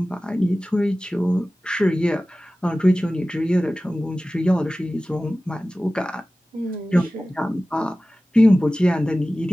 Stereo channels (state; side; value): normal; both; correlation 0.96